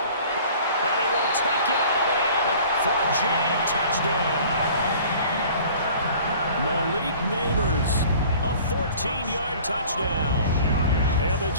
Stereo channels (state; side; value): inverted; both; correlation -0.48